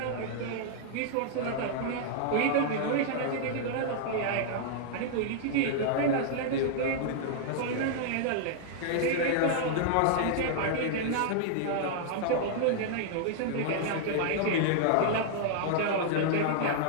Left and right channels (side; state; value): both; different; correlation -0.01